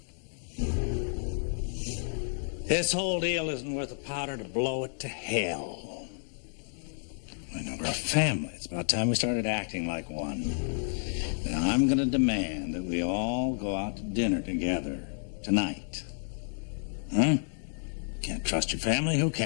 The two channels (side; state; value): right; silent; digital silence